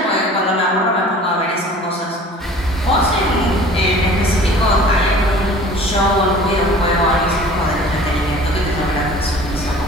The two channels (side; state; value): both; normal; correlation 0.46